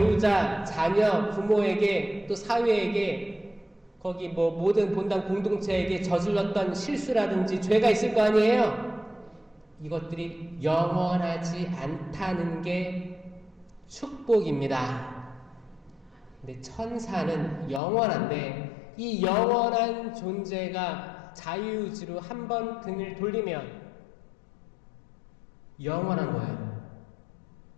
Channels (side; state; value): right; drops out; at 17.8 s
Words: 자녀, 부모에게 또 사회에게 거기 모든 본당 공동체에게 저질렀던 실수라든지 죄가 있을 거 아니에요? 이것들이 영원하지 않다는 게 축복입니다. 근데 천사는 영원한데 이 영원한 존재가 자유의지로 한 번 등을 돌리면 영원한 거예요.